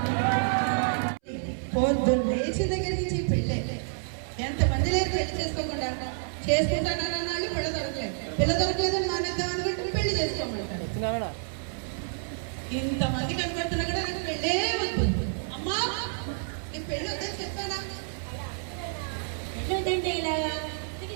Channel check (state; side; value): silent; left; 59 dB below the other